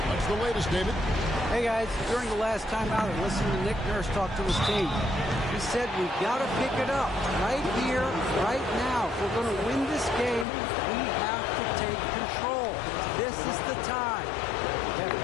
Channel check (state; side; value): drops out; right; at 10.5 s